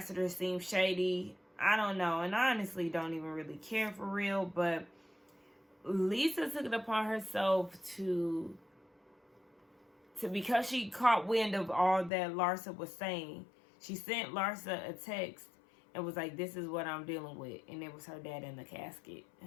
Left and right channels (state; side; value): drops out; right; at 12.1 s